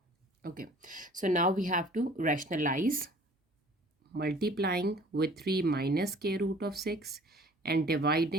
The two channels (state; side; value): normal; both; correlation 0.51